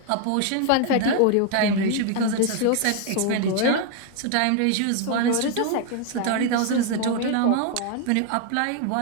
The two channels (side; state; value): both; different; correlation 0.01